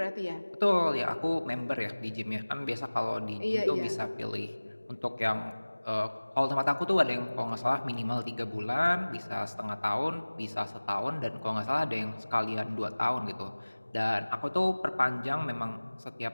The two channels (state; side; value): inverted; both; correlation -1.00